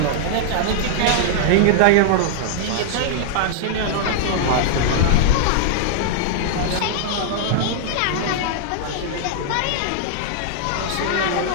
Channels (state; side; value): different; both; correlation -0.01